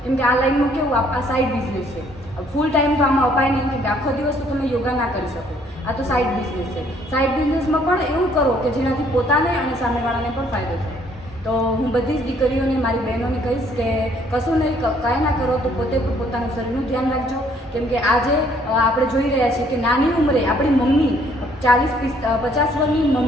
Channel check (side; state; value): both; normal; correlation 0.63